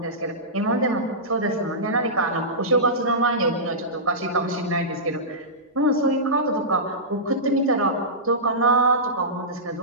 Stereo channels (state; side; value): normal; both; correlation -0.16